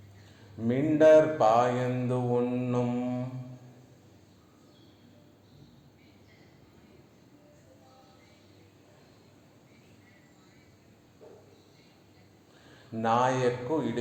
மிண்டர் பாயந்து உண்ணும் నాయక్కు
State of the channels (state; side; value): identical; both; correlation 1.00